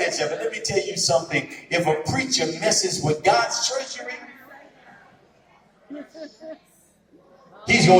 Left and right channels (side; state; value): both; identical; correlation 1.00